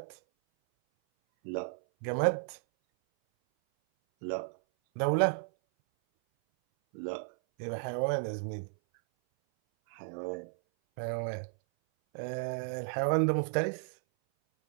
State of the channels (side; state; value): left; silent; 56 dB below the other